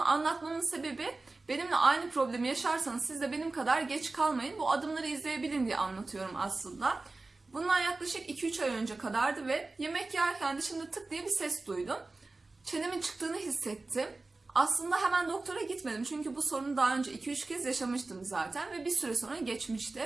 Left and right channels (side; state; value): left; quieter; 3.4 dB